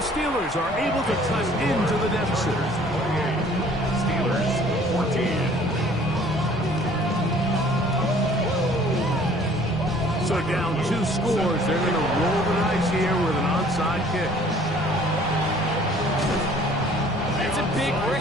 Steelers are able to cut into the deficit. Steelers 14. So down 2 scores, they're going to roll the dice here with an onside kick. It's a big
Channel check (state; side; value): noise; left; rumble, 15 dB below the sound